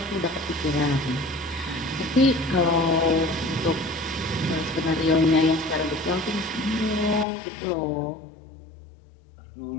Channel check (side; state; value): right; drops out; at 7.2 s